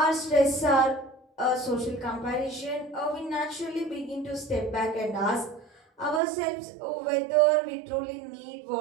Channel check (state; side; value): drops out; left; at 6.2 s